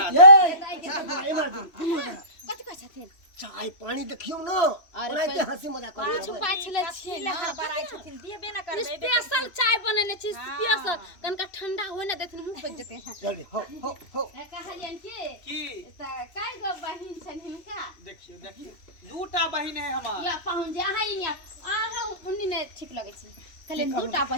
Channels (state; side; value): late; right; 3.0 ms